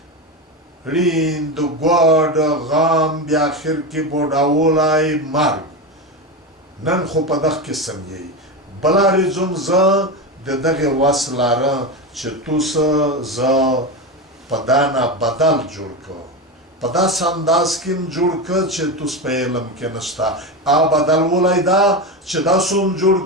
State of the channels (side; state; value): both; normal; correlation 0.17